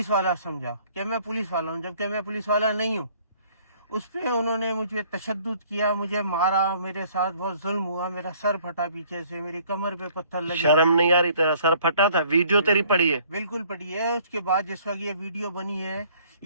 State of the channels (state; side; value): inverted; both; correlation -0.59